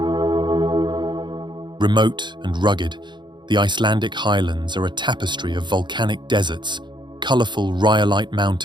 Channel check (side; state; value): left; late; 0.22 ms